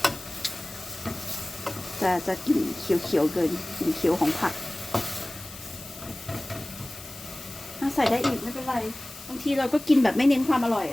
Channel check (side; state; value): left; noise; hiss, 15 dB below the sound